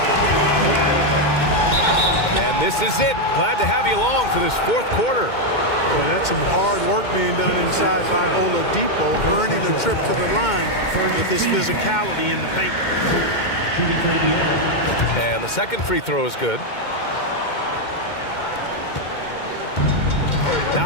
And this is it. Glad to have you along for this fourth quarter. Boy, that's some hard work being done inside by Oladipo, earning a trip to the line with his physicality in the paint. And the second free throw is good.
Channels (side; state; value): right; late; 2.2 ms